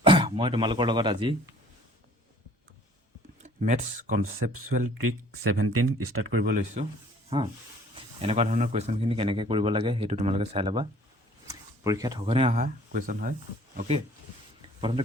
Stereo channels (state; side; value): normal; both; correlation 0.54